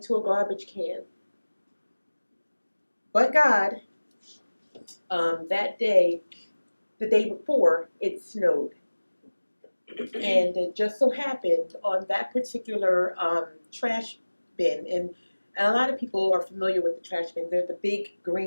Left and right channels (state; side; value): inverted; both; correlation -1.00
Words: a garbage can. But God, that day, the day before, it snowed. And it just so happened on that particular trash bin, and a lot of people are familiar with the trash bins. They're the big